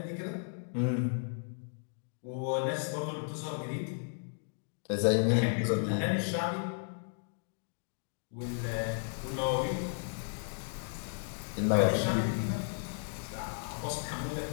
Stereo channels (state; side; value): silent; right; digital silence